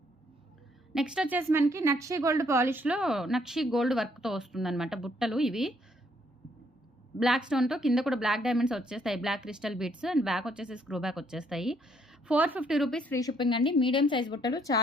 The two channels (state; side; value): normal; both; correlation 0.69